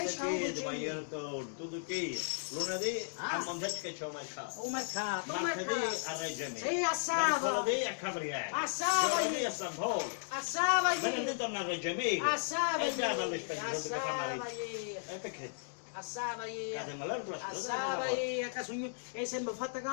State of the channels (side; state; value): right; silent; digital silence